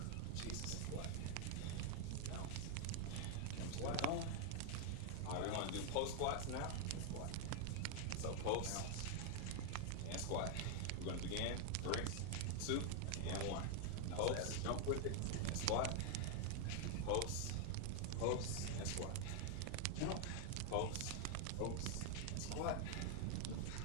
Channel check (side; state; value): both; different; correlation 0.00